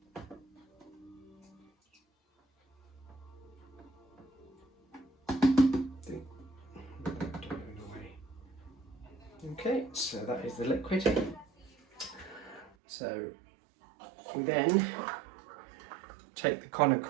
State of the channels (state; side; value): drops out; left; at 12.7 s